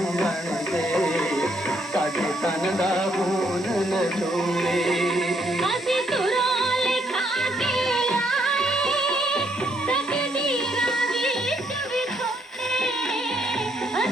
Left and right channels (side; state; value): both; normal; correlation 0.72